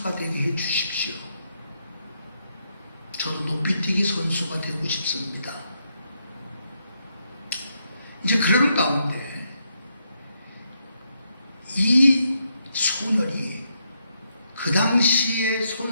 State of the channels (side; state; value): both; inverted; correlation -0.79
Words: 되게 해주십시오. 저도 높이뛰기 선수가 되고 싶습니다. 이제 그러는 가운데 이 소년이, 그 당시의